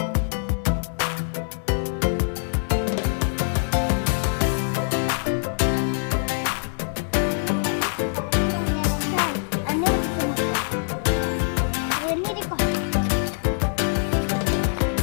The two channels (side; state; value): right; silent; digital silence